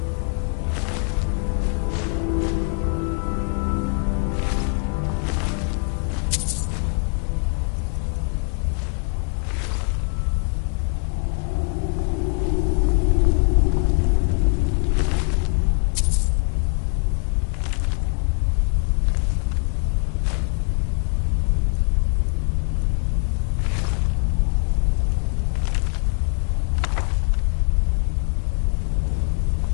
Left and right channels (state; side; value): quieter; right; 39.5 dB